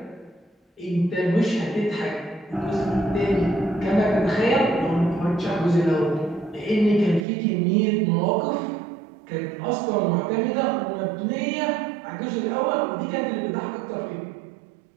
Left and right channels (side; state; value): left; drops out; at 7.2 s